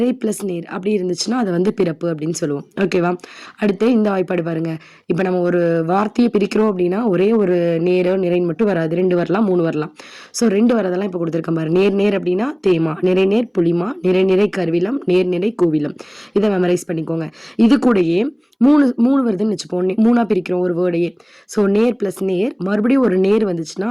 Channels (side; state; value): both; identical; correlation 1.00